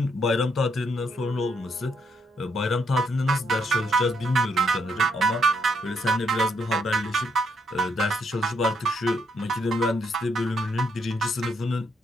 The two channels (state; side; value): normal; both; correlation 0.75